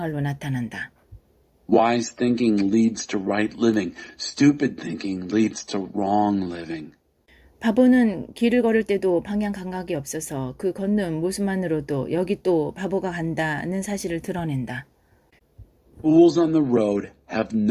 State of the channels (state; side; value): identical; both; correlation 1.00